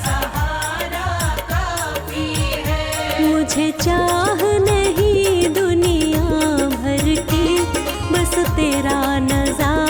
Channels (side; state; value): both; identical; correlation 1.00